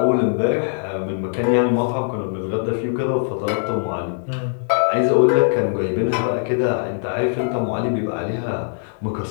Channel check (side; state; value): right; silent; digital silence